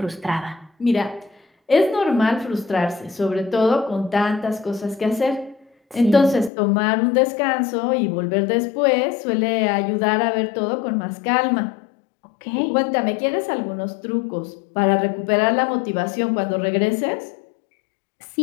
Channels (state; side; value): drops out; right; at 6.5 s